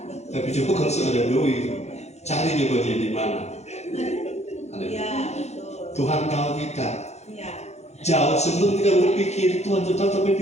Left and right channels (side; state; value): right; late; 0.32 ms